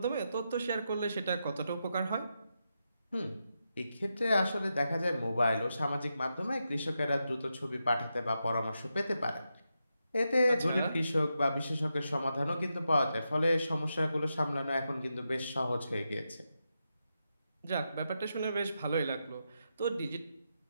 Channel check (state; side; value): inverted; both; correlation -0.86